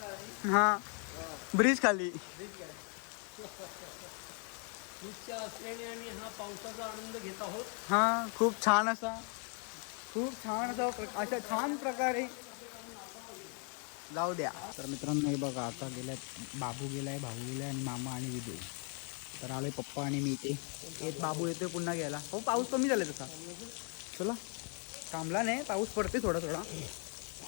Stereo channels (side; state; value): right; quieter; 39.7 dB